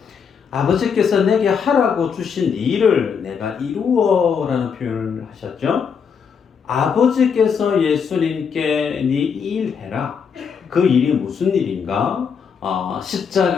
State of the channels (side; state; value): right; quieter; 6.5 dB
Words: 아버지께서 내게 하라고 주신 일을 내가 이루어라는 표현을 하셨죠. 아버지께서 예수님께 네 일 해라. 그 일이 무슨 일인가?